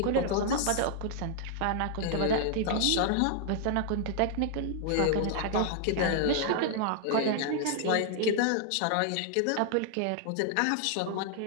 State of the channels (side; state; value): both; different; correlation -0.01